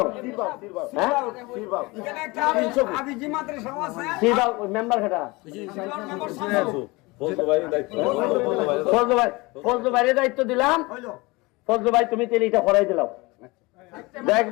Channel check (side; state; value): right; quieter; 23.9 dB